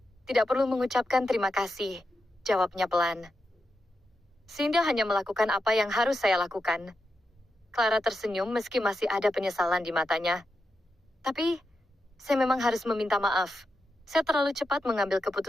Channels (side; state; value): both; normal; correlation 0.88